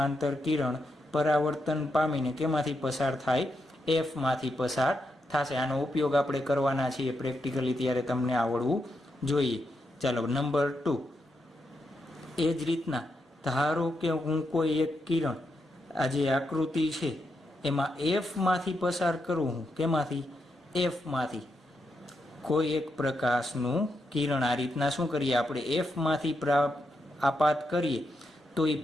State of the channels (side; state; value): both; normal; correlation 0.83